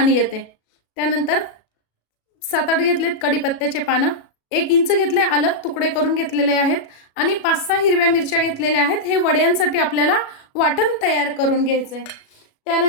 येते. त्यानंतर 7-8 घेतलेत कढीपत्त्याचे पानं, 1 इंच घेतले आलं तुकडे करून घेतलेले आहेत आणि 5-6 हिरव्या मिरच्या घेतलेल्या आहेत. हे वड्यांसाठी आपल्याला वाटण तयार करून घ्यायचे.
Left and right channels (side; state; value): right; late; 36 ms